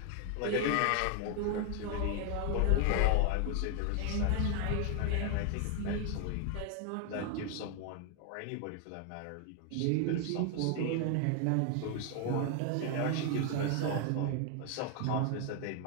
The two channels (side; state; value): both; different; correlation 0.00